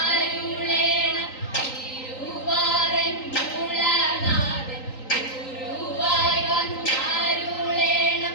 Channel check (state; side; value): late; right; 3.9 ms